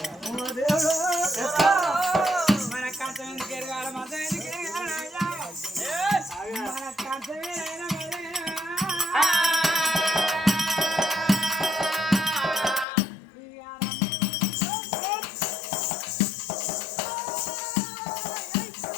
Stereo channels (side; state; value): right; drops out; at 12.9 s